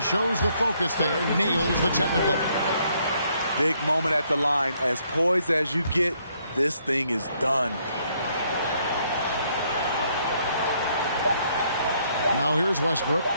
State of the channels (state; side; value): inverted; both; correlation -0.70